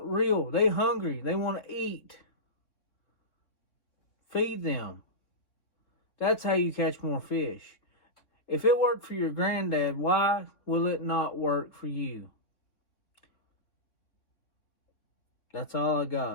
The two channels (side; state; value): right; late; 3.6 ms